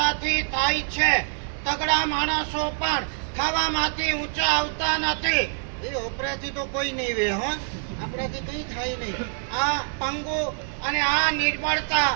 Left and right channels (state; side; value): silent; left; 57 dB below the other